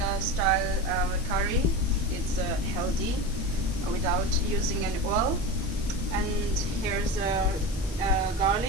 style curry. It's healthy without using any oil. And here's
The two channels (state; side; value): noise; left; hiss, 16 dB below the sound